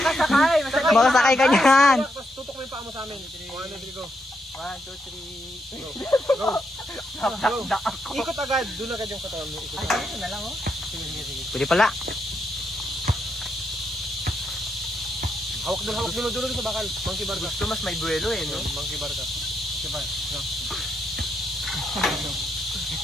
Makasakay ka niyan. Tutok mo yung paa mo sa amin. 1, 2, 3, go. 1, 2, 3, go. Go. Ikot agad. Doon agad yung katawan mo. Ikot agad. Ito na lang, oh. Sige. Pwede pala. Hawak dulo sa bakal. Monkey bar ka. Gusto mas may buwelo eh, no? Monkey bar ka. Monkey bar.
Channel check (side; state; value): both; normal; correlation 0.80